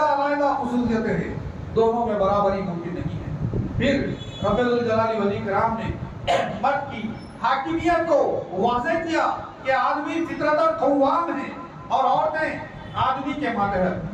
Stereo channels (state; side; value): identical; both; correlation 1.00